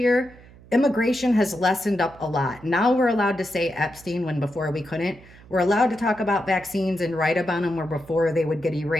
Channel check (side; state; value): right; noise; hum, 23 dB below the sound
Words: immigration has lessened up a lot. Now we're allowed to say Epstein when before we couldn't. We're allowed to talk about vaccines and write about them where before they would get